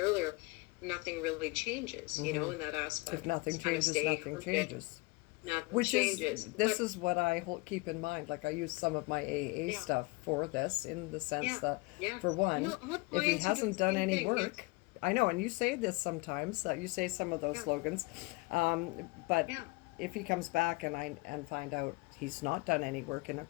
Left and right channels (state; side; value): quieter; right; 24.9 dB